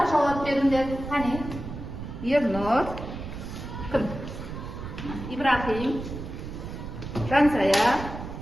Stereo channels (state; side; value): noise; right; rumble, 9 dB below the sound